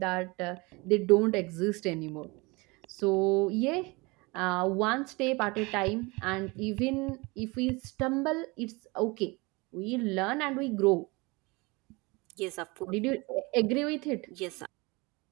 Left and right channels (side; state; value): left; quieter; 25.7 dB